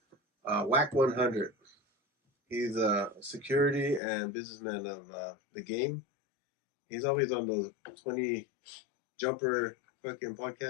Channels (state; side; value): drops out; right; at 4.0 s